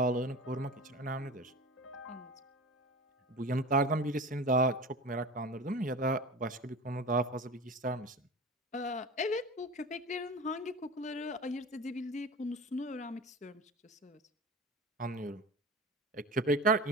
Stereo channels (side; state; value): both; normal; correlation 0.32